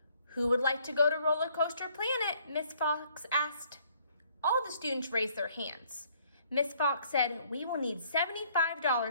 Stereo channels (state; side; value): inverted; both; correlation -0.64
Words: "Who would like to go to Roller Coaster Planet?" Miss Fox asked. All the students raised their hands. Miss Fox said, "We will need